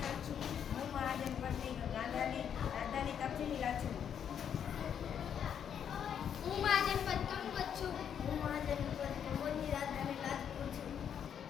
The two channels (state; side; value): quieter; right; 8.4 dB